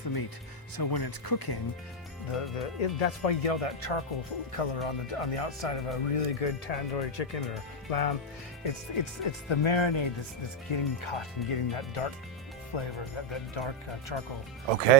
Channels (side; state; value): both; normal; correlation 0.01